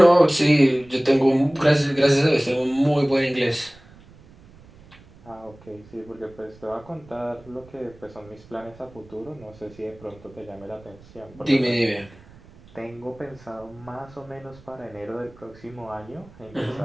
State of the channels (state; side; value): noise; right; rumble, 24 dB below the sound